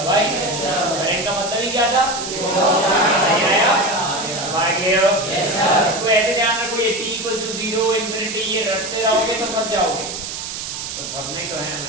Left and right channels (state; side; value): noise; right; hiss, 7 dB below the sound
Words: भाई? करंट का मतलब ही क्या था? नहीं आया? इसको ऐसे ध्यान रखो, ये t = 0 इंफिनिटी, ये रटते रहोगे तो फंस जाओगे। बस फंसने ही तो है